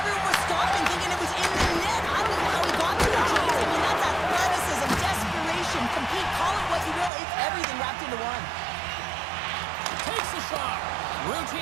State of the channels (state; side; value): drops out; left; at 7.1 s